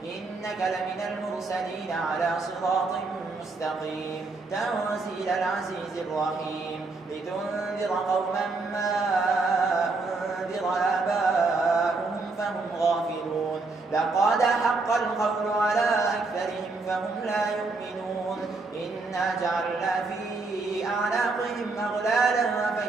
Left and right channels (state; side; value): quieter; left; 3.7 dB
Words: إنك لمن المرسلين على صراط مستقيم تنزيل العزيز الرحيم لتنذر قوما ما أنذر آباؤهم فهم غافلون لقد حق القول على أكثرهم فهم لا يؤمنون إنا جعلنا في أعناقهم أغلالا